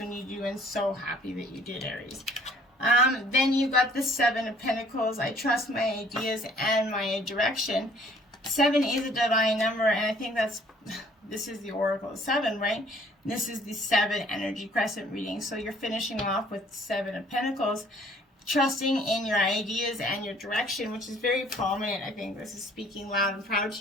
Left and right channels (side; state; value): both; normal; correlation 0.58